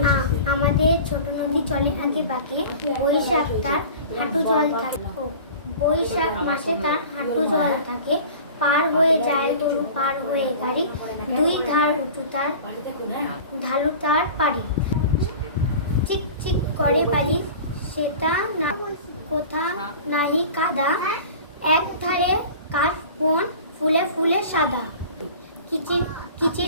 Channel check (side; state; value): both; inverted; correlation -0.39